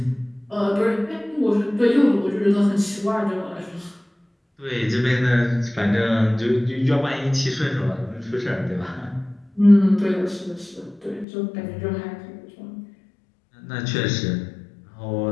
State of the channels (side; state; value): right; drops out; at 11.2 s